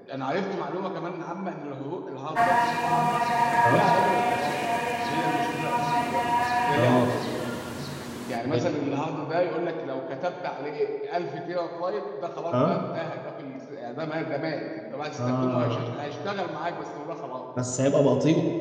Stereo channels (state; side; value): identical; both; correlation 1.00